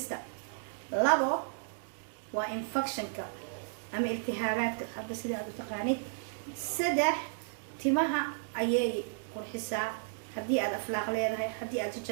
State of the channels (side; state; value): left; silent; digital silence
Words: labo waa infectionka ama iltihaabaadka hadda sida aad u taqaanid saddex timaha ayay qurxisaa haddii aad aflaaq leedahay haddii aad